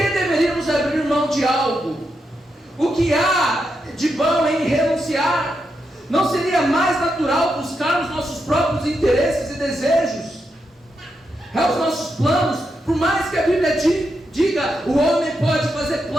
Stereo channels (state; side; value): normal; both; correlation 0.84